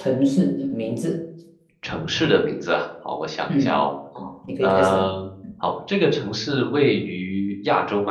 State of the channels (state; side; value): identical; both; correlation 1.00